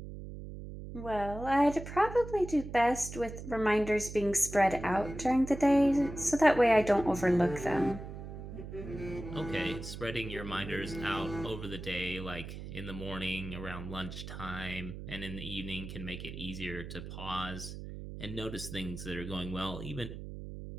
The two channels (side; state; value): right; noise; hum, 10 dB below the sound